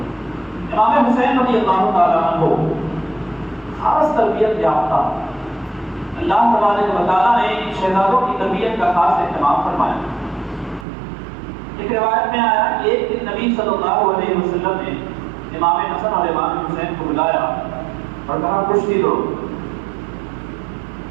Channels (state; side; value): drops out; left; at 10.9 s